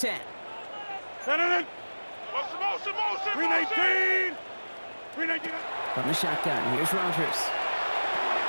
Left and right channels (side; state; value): both; inverted; correlation -1.00